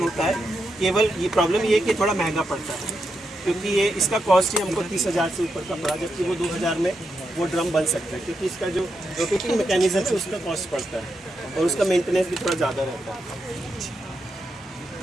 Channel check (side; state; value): both; normal; correlation 0.85